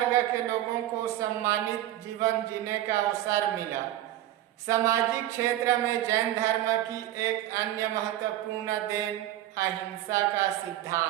के लोगों को सम्मानित जीवन जीने का अवसर मिला। सामाजिक क्षेत्र में जैन धर्म की एक अन्य महत्वपूर्ण देन अहिंसा का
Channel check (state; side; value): quieter; left; 14.0 dB